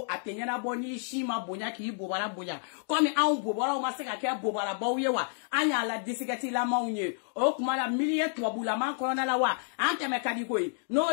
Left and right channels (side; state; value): right; silent; digital silence